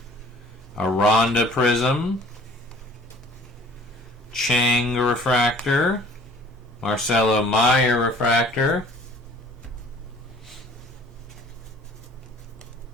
Aranda Prism, Chang refractor, Marcelo Meyer refractor,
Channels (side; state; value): both; normal; correlation 0.52